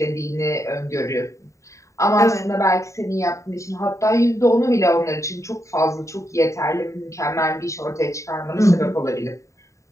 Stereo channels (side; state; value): right; late; 0.15 ms